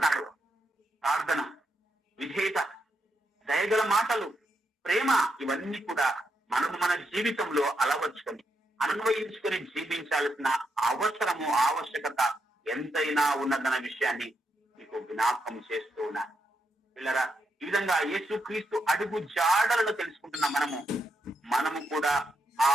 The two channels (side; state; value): both; normal; correlation 0.81